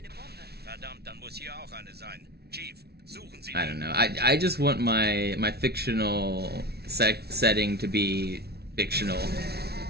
Bombe. Verdammt, dann muss hier auch eine sein. Chief, suchen Sie. I don't know. I just want my fictional setting to be fictional.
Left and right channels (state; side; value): late; left; 0.47 ms